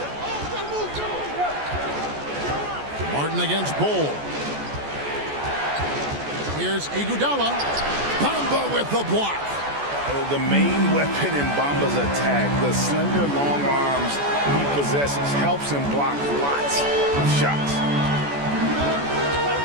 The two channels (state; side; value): late; left; 14 ms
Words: Martin against Bull. Here's Iguodala. Bamba with the block. The main weapon in Bamba's attack, the slender, long arms he possesses, helps him block lots of shots.